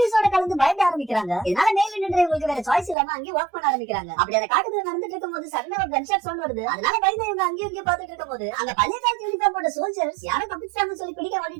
கலந்து பயப்பட ஆரம்பிக்கிறாங்க. இதனால மேல நின்று இவங்களுக்கு வேற சாய்ஸ் இல்லாம அங்கேயே வாக் பண்ண ஆரம்பிக்கிறாங்க. அப்படி அந்த காட்டுக்குள்ள நடந்துட்டு இருக்கும்போது சடனா ஒரு கன்ஷாட் சவுண்ட் வருது. அதனால பயந்து இவங்க அங்கேயும் இங்கேயும் பார்த்துட்டு இருக்கும்போது அந்த பழைய காலத்து யூனிஃபார்ம் போட்ட சோல்ஜர்ஸ் யாரும் தப்பிச்சாங்கன்னு சொல்லி பிடிக்க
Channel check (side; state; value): left; drops out; at 3.0 s